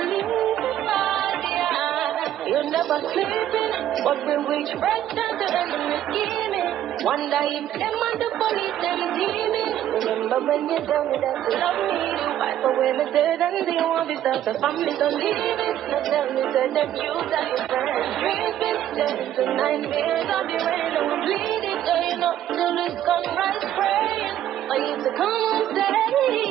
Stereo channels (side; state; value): left; quieter; 11.7 dB